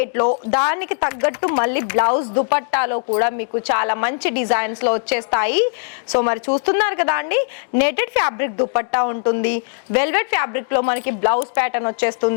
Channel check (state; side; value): silent; right; digital silence